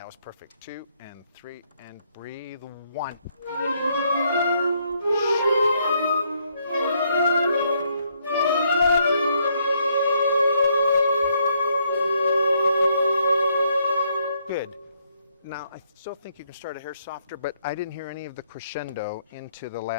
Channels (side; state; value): both; inverted; correlation -0.72